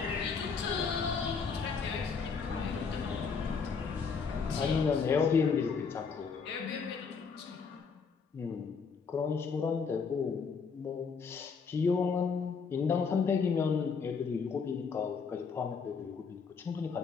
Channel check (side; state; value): right; quieter; 5.5 dB